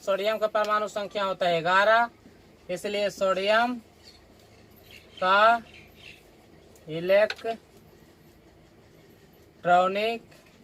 का परमाणु संख्या होता है 11, इसलिए सोडियम का इलेक्ट्रॉनिक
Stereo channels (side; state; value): both; identical; correlation 1.00